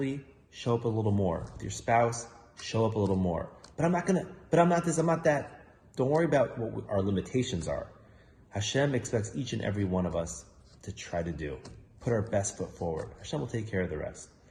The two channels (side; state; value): both; identical; correlation 1.00